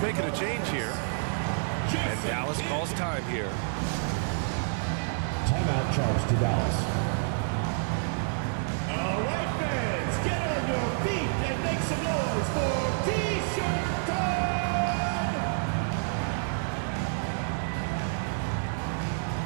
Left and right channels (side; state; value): left; silent; digital silence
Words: making a change here. And Dallas calls time here. Timeout charged to Dallas. All right, fans, get on your feet and make some noise for T-shirt time!